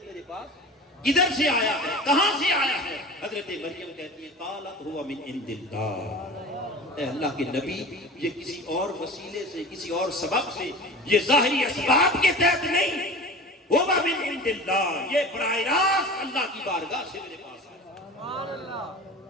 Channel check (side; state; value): both; normal; correlation 0.36